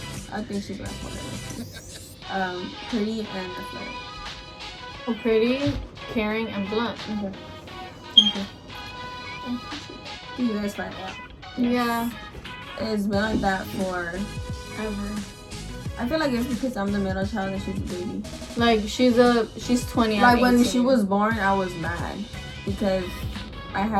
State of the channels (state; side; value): identical; both; correlation 1.00